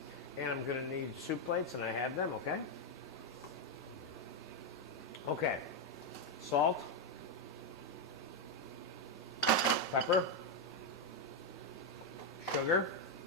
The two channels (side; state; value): both; normal; correlation 0.03